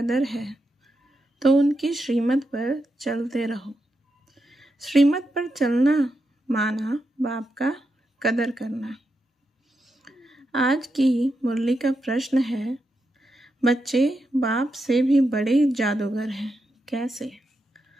है तो उनकी श्रीमत पर चलते रहो। श्रीमत पर चलना माना बाप का कदर करना। आज की मुरली का प्रश्न है, बच्चे बाप से भी बड़े जादूगर हैं, कैसे?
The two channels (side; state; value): both; normal; correlation 0.85